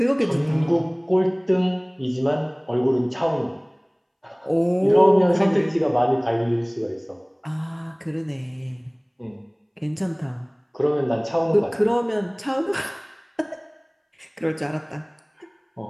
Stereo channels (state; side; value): identical; both; correlation 1.00